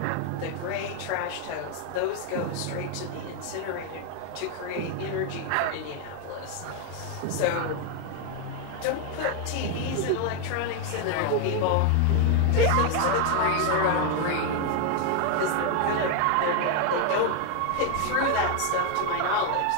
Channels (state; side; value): different; both; correlation 0.01